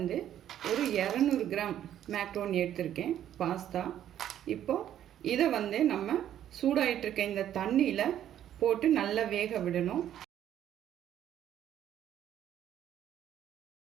ஒரு 200 கிராம் மேக்ரோனி எடுத்திருக்கேன் பாஸ்தா. இப்போது இதை வந்து நம்ம சூடாயிட்டிருக்க இந்த தண்ணியில் போட்டு நல்லா வேக விடணும்.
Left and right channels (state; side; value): quieter; left; 11.0 dB